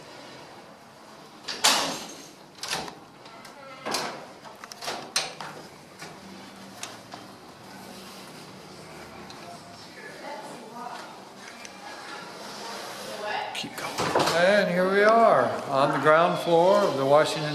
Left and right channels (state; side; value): identical; both; correlation 1.00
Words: Keep going. And here we are on the ground floor of the